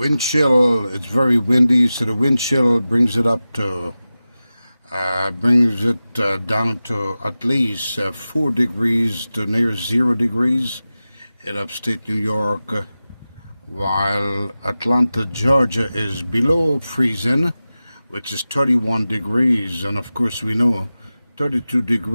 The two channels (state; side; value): inverted; both; correlation -0.95